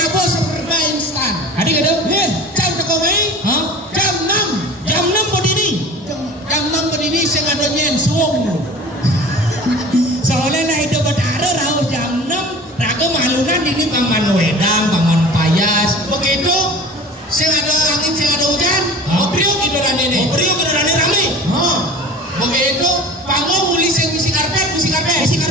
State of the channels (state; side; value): normal; both; correlation 0.40